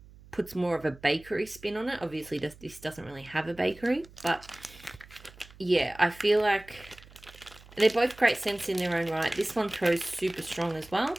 puts more of a bakery spin on it. Obviously, this doesn't really have a bakery, but yeah, I feel like they're both great scents in their own right. This one throws super strong as well.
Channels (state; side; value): noise; right; hum, 22 dB below the sound